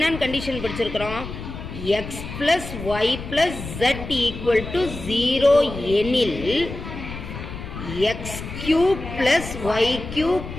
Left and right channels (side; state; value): left; noise; rumble, 9 dB below the sound